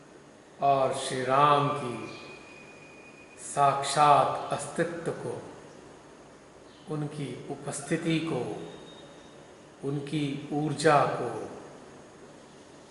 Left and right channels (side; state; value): both; identical; correlation 1.00